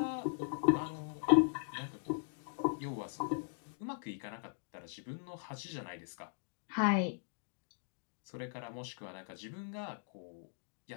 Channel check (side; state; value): right; silent; digital silence